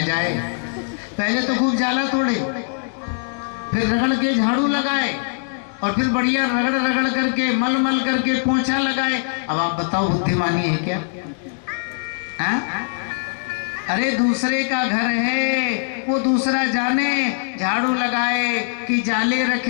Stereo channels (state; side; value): silent; right; 65 dB below the other